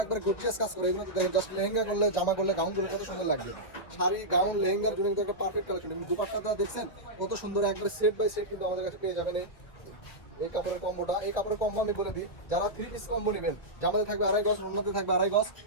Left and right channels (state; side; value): late; right; 2.0 ms